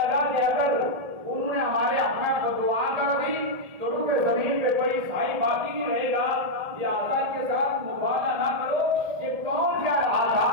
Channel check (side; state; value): left; late; 1.8 ms